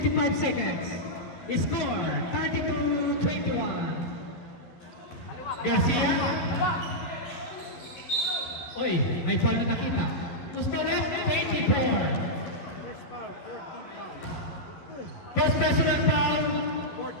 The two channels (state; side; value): late; right; 12 ms